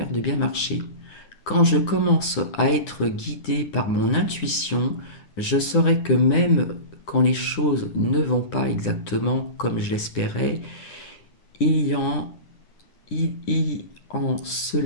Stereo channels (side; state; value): right; late; 9.9 ms